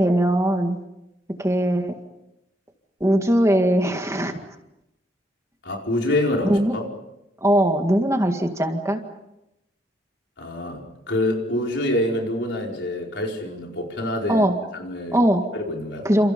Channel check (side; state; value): both; normal; correlation 0.71